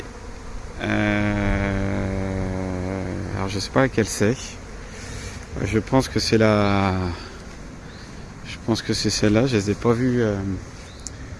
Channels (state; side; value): identical; both; correlation 1.00